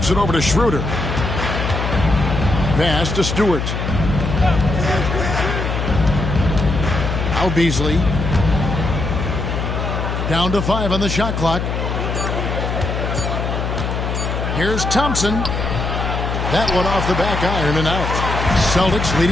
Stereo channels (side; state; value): left; noise; hum, 2 dB below the sound